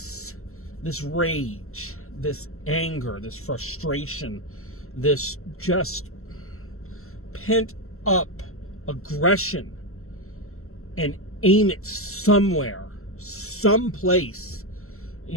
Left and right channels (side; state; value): right; late; 0.63 ms